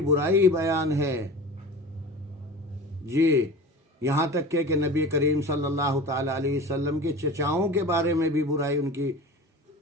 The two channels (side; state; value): both; normal; correlation 0.35